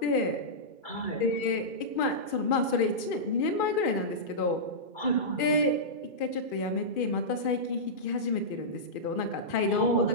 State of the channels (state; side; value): late; right; 2.5 ms